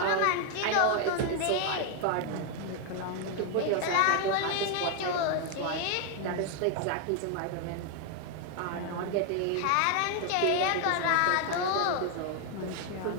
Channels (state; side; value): different; both; correlation 0.01